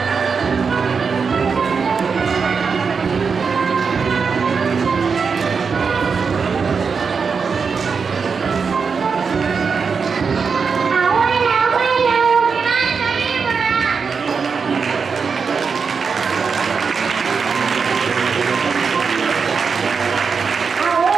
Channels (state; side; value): quieter; left; 5.5 dB